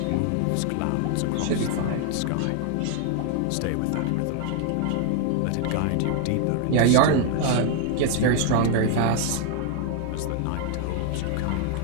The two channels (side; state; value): both; different; correlation 0.00